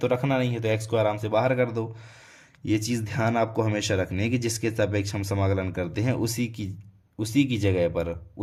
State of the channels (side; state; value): both; identical; correlation 1.00